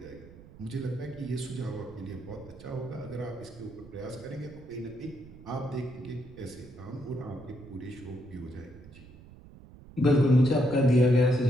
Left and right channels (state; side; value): noise; right; rumble, 19 dB below the sound